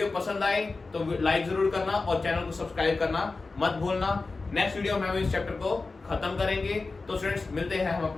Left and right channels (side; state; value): right; quieter; 3.8 dB